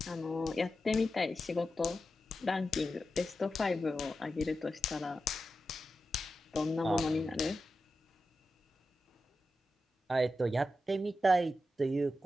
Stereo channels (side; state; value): both; normal; correlation 0.90